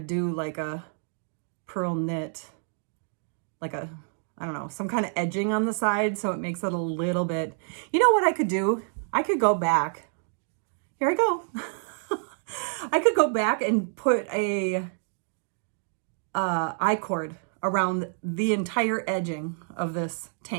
do like a pearl knit, like I don't know, some kind of edging on the side so it makes it a little bit, you know what I could do? I could go back. Here I go. I could go back and put a I-cord around the entire edging of this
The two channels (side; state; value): left; silent; 59 dB below the other